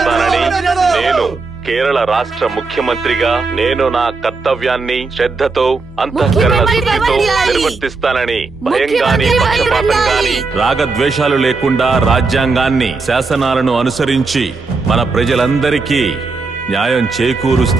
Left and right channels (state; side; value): quieter; left; 4.0 dB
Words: నేను కేరళ రాష్ట్ర ముఖ్యమంత్రిగా నేను నా కర్తవ్యాన్ని శ్రద్ధతో, అంతఃకరణ శుద్ధితో నిర్వర్తిస్తానని, భయంగాని పక్షపాతంగాని రాగద్వేషాలు లేకుండా రాజ్యాంగాన్ని, శాసనాలను అనుసరించి మన ప్రజలందరికీ న్యాయం